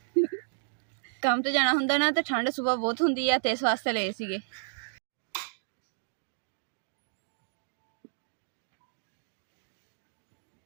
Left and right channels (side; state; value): left; silent; digital silence